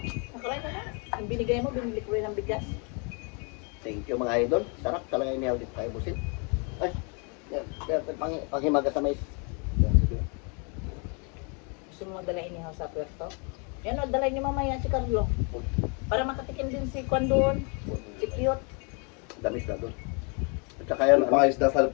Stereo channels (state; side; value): quieter; right; 35.4 dB